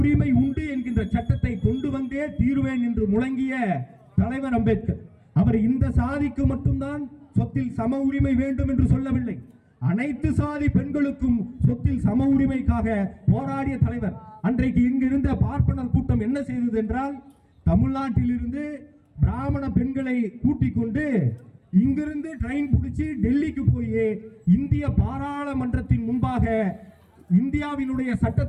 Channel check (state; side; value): identical; both; correlation 1.00